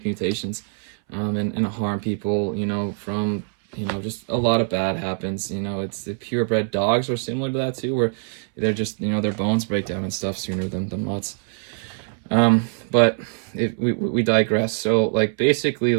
mutations, and harm people, from, just a lot of bad happens. It's the purebred dogs are similar to that too, where they're just, their bones break down and stuff sooner than mutts. But we digress. So like basically,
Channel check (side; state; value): left; silent; 63 dB below the other